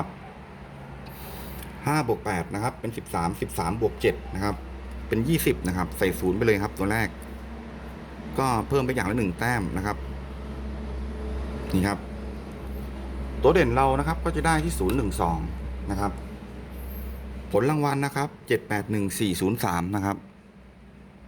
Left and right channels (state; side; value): identical; both; correlation 1.00